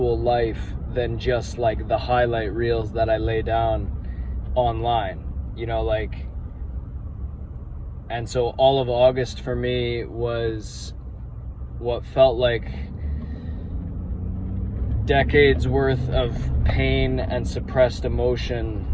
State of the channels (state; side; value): identical; both; correlation 1.00